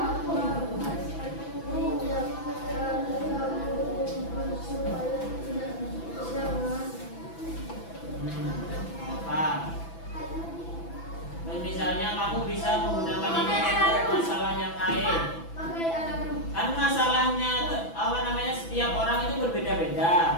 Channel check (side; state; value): right; late; 6.0 ms